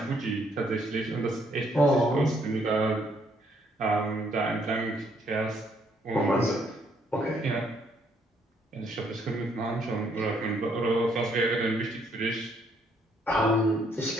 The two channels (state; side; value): normal; both; correlation 0.69